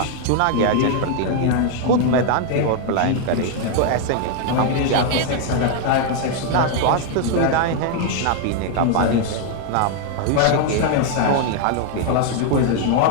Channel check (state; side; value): different; both; correlation 0.00